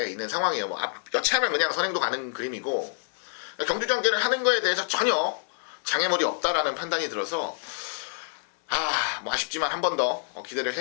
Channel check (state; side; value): silent; right; 60 dB below the other